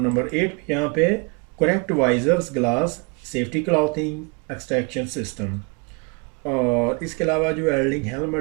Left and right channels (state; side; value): quieter; left; 32.0 dB